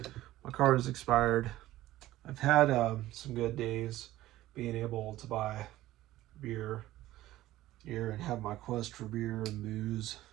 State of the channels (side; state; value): left; quieter; 15.5 dB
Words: My card is expired. I've had some good days being able to buy beer here and have my quest for beer and booze.